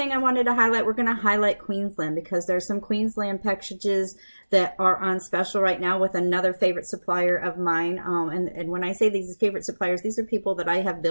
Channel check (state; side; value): inverted; both; correlation -1.00